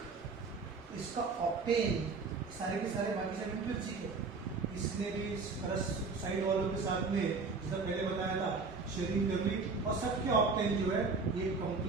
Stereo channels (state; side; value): quieter; left; 4.3 dB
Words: इसका ऑक्टेन सारे के सारे बाकी सब इंट्रिंसिक है। इसने भी साइड वालों के साथ में जैसा पहले बताया था शेयरिंग कर ली और सबके ऑक्टेन जो है ये